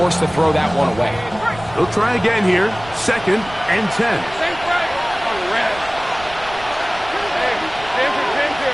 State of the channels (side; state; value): right; noise; rumble, 17 dB below the sound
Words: to throw that one away. They'll try again here. 2nd and 10.